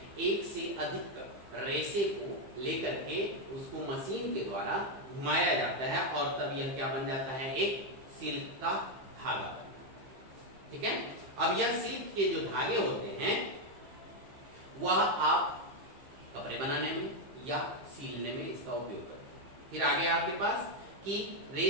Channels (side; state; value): left; late; 15 ms